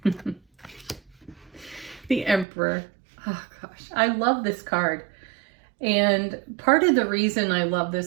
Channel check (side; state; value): left; drops out; at 2.5 s